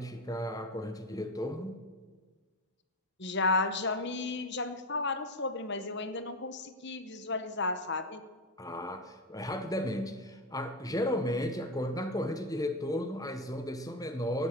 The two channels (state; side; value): normal; both; correlation 0.15